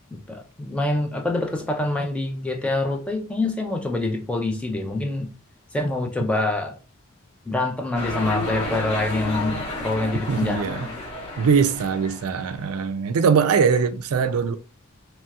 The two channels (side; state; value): both; normal; correlation 0.38